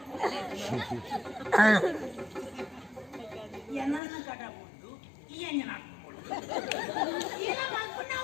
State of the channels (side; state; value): right; drops out; at 4.0 s